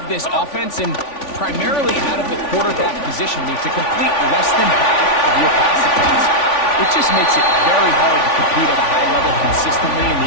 this offense and primarily out of the quarterback position. I mean, to complete less than half of your pass attempts, it just makes it very hard to compete at a high level consistently in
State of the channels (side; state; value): right; late; 3.5 ms